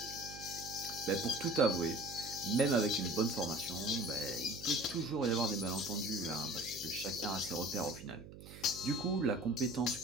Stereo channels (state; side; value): noise; right; hum, 15 dB below the sound